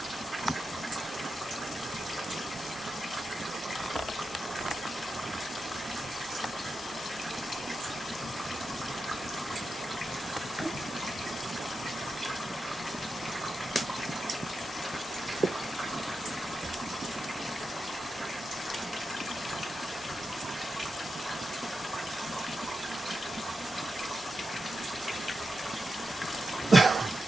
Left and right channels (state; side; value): normal; both; correlation 0.89